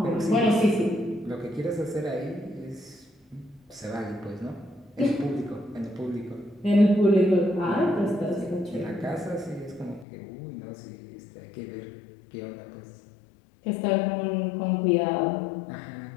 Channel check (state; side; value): drops out; right; at 10.1 s